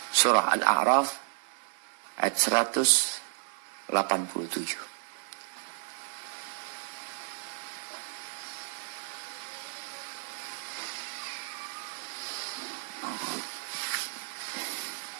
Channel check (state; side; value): silent; left; 56 dB below the other